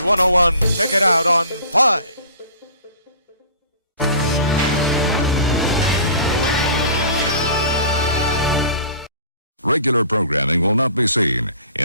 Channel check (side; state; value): both; inverted; correlation -0.44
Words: Check it out on 5. Regular programming will not be seen